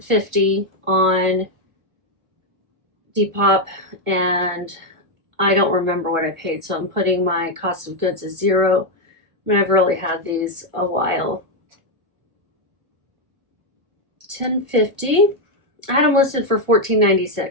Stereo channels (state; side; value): late; left; 1.4 ms